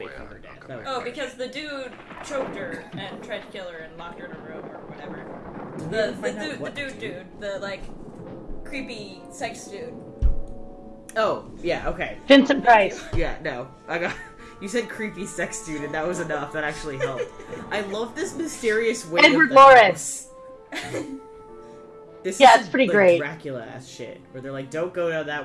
a way faking out. her death. I'll come That back. Oh, because the dude choked her and tried to kill her and locked her in a room or whatever. Did we The ever find out dude, what the like creepy sex dude. Oh, yeah, okay. Vincent Price. Yeah, no. I got. You said creepy sex dude, and that was enough. That actually helped. I love this mysterious way. Edward of the Lawrence. house. This Yeah, is it's pretty like great. Dracula ass shit, where they're like, "Don't go down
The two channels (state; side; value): identical; both; correlation 1.00